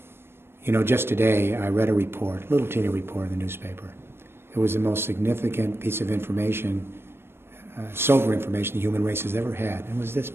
You know, just today I read a report, a little teeny report in the newspaper. It was the most significant piece of information, sober information the human race has ever had. It was this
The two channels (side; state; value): left; late; 0.12 ms